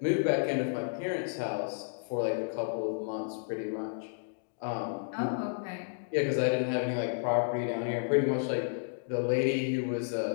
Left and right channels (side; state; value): right; silent; digital silence